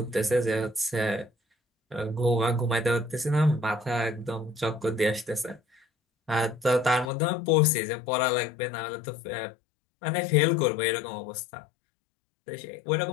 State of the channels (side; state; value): right; drops out; at 7.1 s